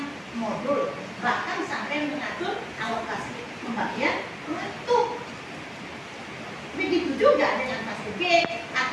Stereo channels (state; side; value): identical; both; correlation 1.00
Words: modul, bahkan sampai mengatur alokasi pembagian waktu. Begitu juga dengan fase B